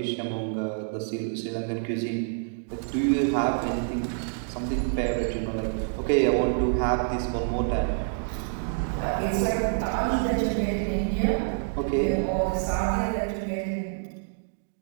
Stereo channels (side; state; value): left; silent; digital silence